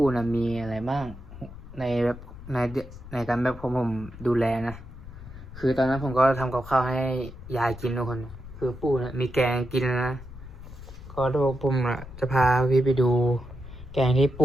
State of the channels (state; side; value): noise; left; rumble, 14 dB below the sound